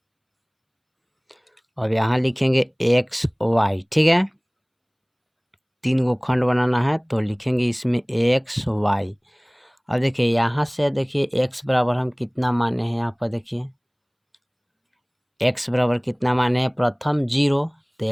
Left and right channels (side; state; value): both; identical; correlation 1.00